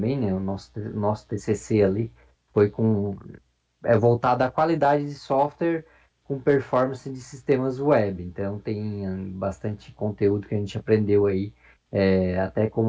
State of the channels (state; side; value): identical; both; correlation 1.00